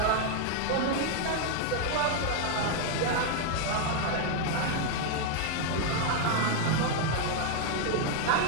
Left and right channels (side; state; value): both; different; correlation 0.00